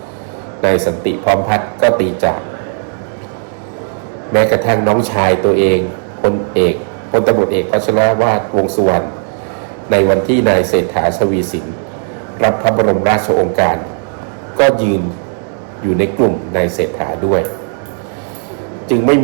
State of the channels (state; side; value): silent; left; 56 dB below the other